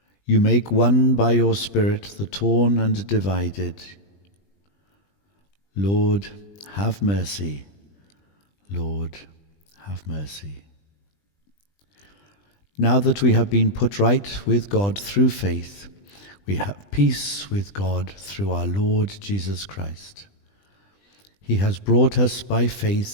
You make one by your Spirit the torn and divided. Lord, have mercy. Lord, have mercy. Now that we have been put right with God through faith, we have peace with God through our Lord Jesus Christ. He has brought us by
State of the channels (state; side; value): late; right; 20 ms